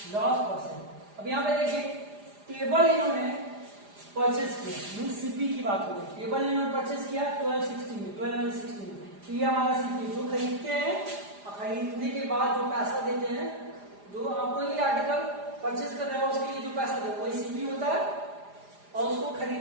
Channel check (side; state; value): left; late; 4.9 ms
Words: loss percent. अब यहाँ पे देखिए table इन्होंने purchase किया, mean CP की बात हो रही है. टेबल इन्होंने परचेस किया 1260 में. तो ये हमारा सीपी जो खरीदते हैं, खरीदने के बाद जो पैसा देते हैं, जो आपको ये आर्टिकल परचेस कर रहे हो उसके लिए जो पैसा दे वही सीपी होता है. और उसको